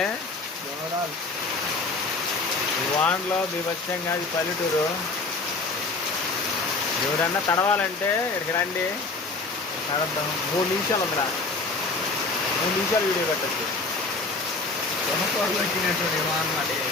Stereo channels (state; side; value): quieter; right; 3.7 dB